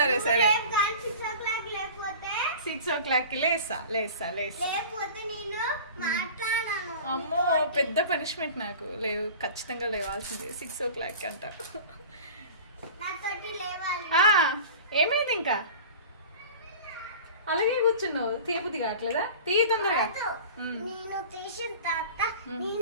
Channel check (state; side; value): inverted; both; correlation -0.38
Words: సరే 6 o'clock లేస్తా. అమ్మో, పెద్ద పనిష్మెంట్ నాకు. లేవు, ఖచ్చితంగా లేవాల్సిందే 6 o'clock అంట. ఏమైంది ఇంకా అలాగే కూర్చున్నావు? తీయబుద్ధి కావట్లేదా? తీయ తొందరగా.